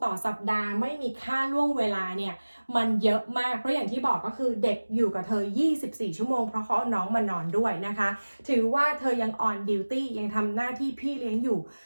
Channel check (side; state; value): both; inverted; correlation -1.00